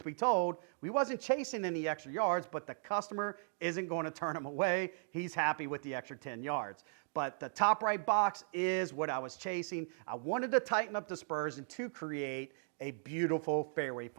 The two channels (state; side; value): silent; left; digital silence